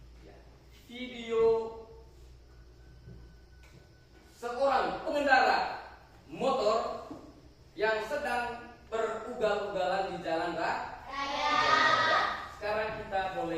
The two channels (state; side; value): identical; both; correlation 1.00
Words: ya, video seorang pengendara motor yang sedang berugal-ugalan di jalan raya. Sekarang kita